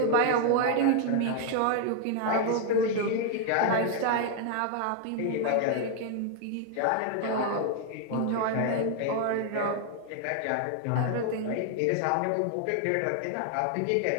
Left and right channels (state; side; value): different; both; correlation 0.00